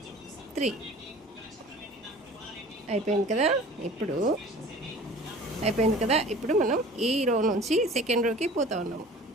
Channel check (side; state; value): both; normal; correlation 0.44